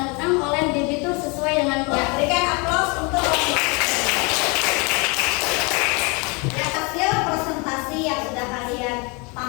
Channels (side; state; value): right; quieter; 30.1 dB